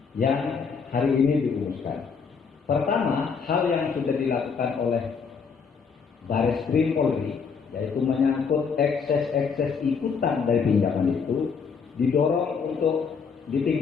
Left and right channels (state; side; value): quieter; right; 5.8 dB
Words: yang hari ini dirumuskan. Pertama, hal yang sudah dilakukan oleh Bareskrim Polri, yaitu menyangkut ekses ikutan dari pinjaman itu, didorong untuk